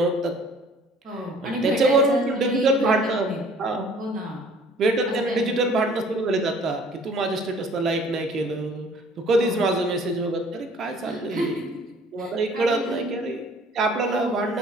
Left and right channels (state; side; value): normal; both; correlation 0.53